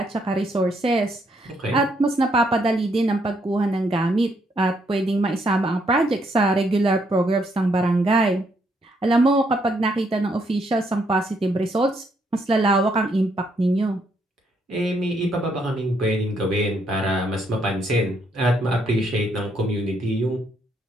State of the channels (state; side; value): normal; both; correlation 0.73